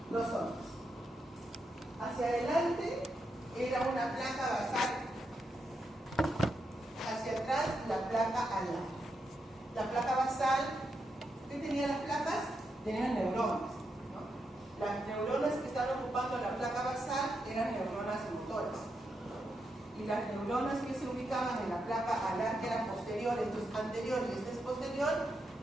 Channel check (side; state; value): both; normal; correlation 0.84